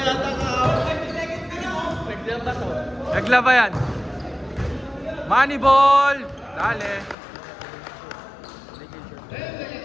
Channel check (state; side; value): drops out; right; at 7.2 s